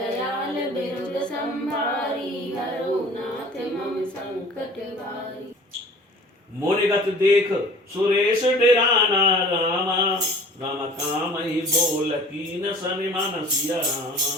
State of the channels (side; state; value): both; normal; correlation 0.46